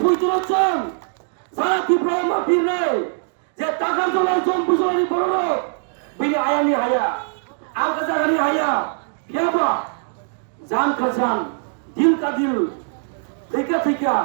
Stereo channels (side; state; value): left; silent; digital silence